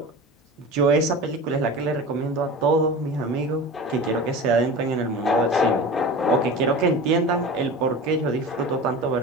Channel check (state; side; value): normal; both; correlation 0.33